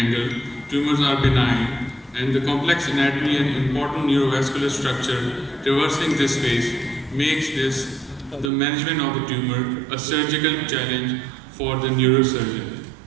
tumors are benign, and the complex anatomy and important neurovascular structure traversing this space makes this the management of the tumor a surgical challenge for the neurosurgeon.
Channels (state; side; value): drops out; left; at 8.5 s